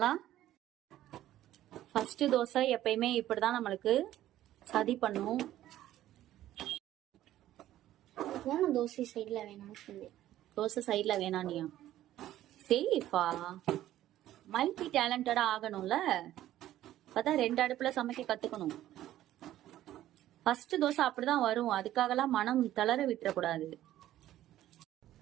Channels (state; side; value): quieter; left; 13.4 dB